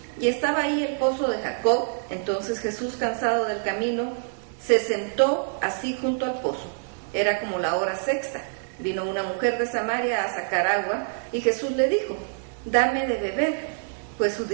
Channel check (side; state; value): left; silent; digital silence